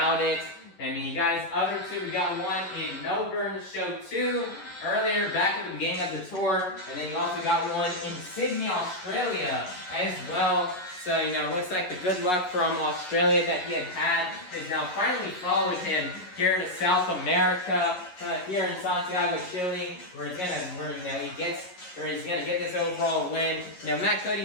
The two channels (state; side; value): late; right; 11 ms